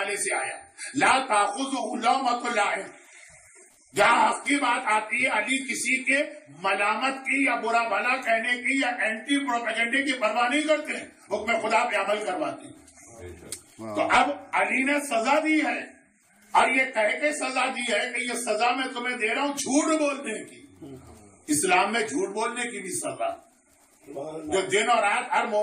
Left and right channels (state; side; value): identical; both; correlation 1.00